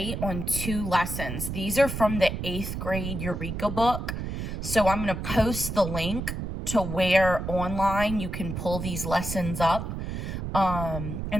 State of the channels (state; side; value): noise; right; rumble, 5 dB below the sound